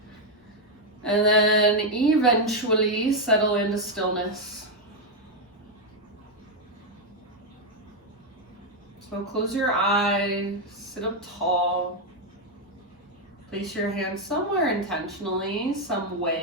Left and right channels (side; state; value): both; normal; correlation 0.03